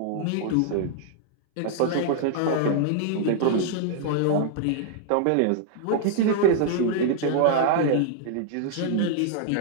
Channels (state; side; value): different; both; correlation -0.01